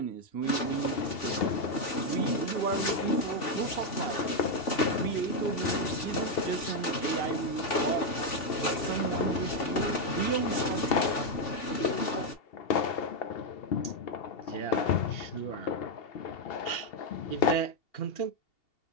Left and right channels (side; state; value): right; late; 2.7 ms